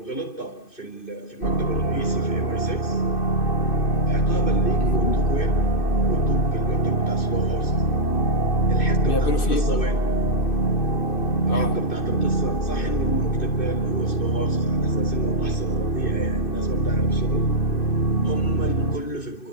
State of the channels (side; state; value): right; late; 2.6 ms